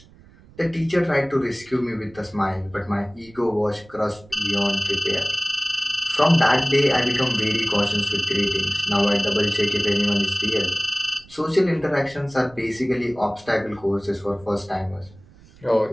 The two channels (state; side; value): noise; right; rumble, 25 dB below the sound